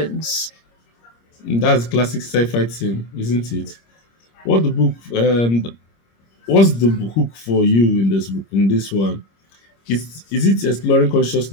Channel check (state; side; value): late; right; 26 ms